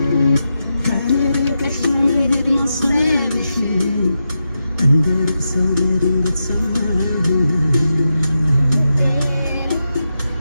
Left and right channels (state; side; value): inverted; both; correlation -0.88